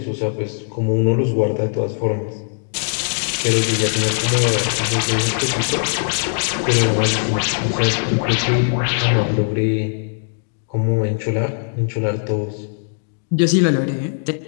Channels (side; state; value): right; silent; digital silence